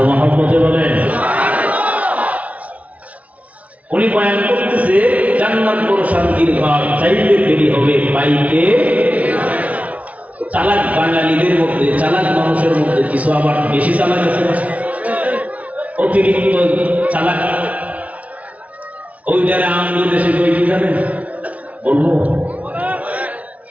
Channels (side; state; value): left; late; 0.068 ms